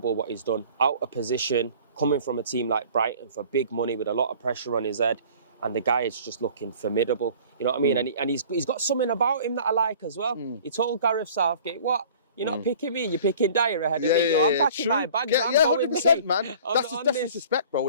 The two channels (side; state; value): both; inverted; correlation -0.48